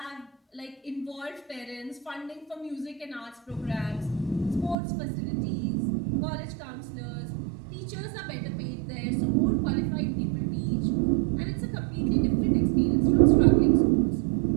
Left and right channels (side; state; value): left; drops out; at 4.8 s